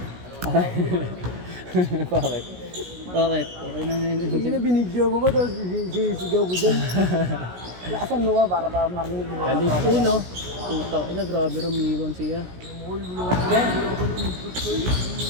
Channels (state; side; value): late; left; 17 ms